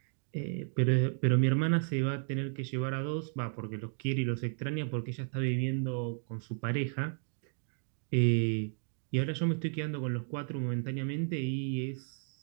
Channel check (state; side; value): silent; left; 55 dB below the other